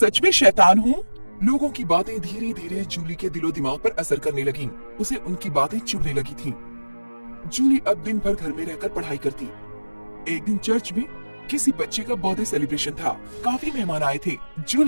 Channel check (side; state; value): both; inverted; correlation -1.00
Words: में शैतान हूँ? लोगों की बातें धीरे धीरे जूली के दिलो दिमाग पर असर करने लगी। उसे उनकी बातें चुभने लगी थी। जूली अब दिन भर घर में रहकर पढ़ाई करती। एक दिन चर्च में किसी बच्चे का बर्थडे सेलिब्रेशन था। काफी मेहमान आए थे।